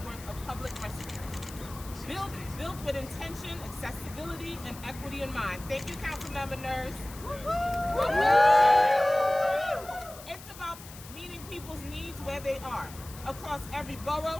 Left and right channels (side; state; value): left; noise; hiss, 16 dB below the sound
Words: of public restrooms. Built with intention, accessibility, and equity in mind. Thank you, Councilmember Nurse. It's about meeting people's needs where they are, across every